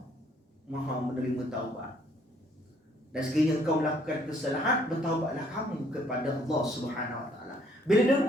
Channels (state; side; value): normal; both; correlation 0.64